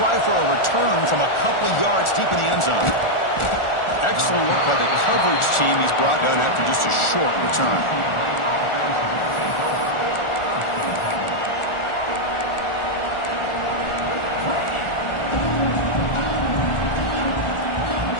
for a return from a couple yards deep in the end zone. Excellent work by the coverage team. He's brought down after just a short return.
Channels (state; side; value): late; right; 1.4 ms